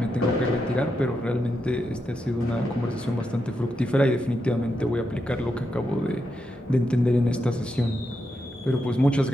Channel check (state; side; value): normal; both; correlation 0.85